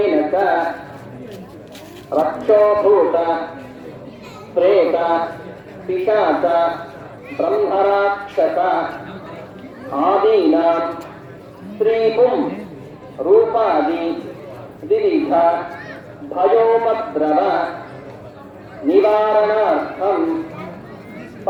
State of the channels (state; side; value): identical; both; correlation 1.00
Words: చ రక్షోభూత ప్రేత పిశాచ బ్రహ్మరాక్షస ఆదీనాం స్త్రీపుం రూపాది వివిధ భయోపద్రవ నివారణార్థం